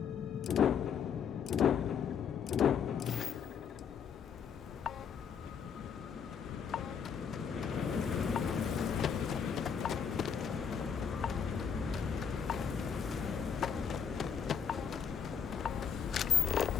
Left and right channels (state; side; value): quieter; right; 7.1 dB